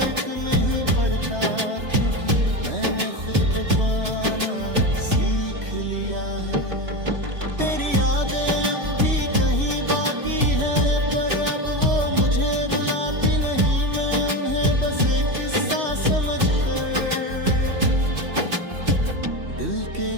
नहीं पड़ता, क्योंकि मैंने खुद को पाना सीख लिया है। तेरी यादें अब भी कहीं बाकी है, पर अब वो मुझे रुलाती नहीं। मैं उन्हें बस एक किस्सा समझकर दिल के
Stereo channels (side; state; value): left; late; 3.1 ms